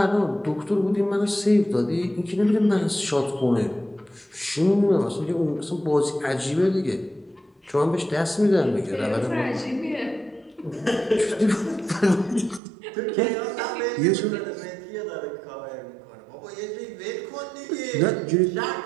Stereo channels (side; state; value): left; drops out; at 12.6 s